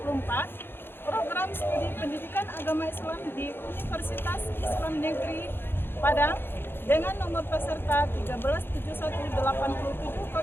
program studi pendidikan agama Islam di Universitas Islam Negeri Padang dengan nomor peserta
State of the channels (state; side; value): late; right; 0.10 ms